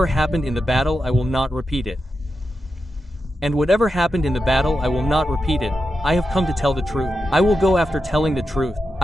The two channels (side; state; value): both; normal; correlation 0.89